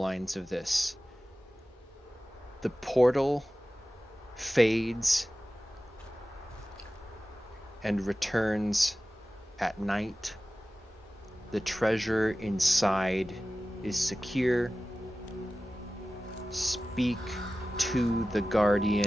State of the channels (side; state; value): both; normal; correlation 0.96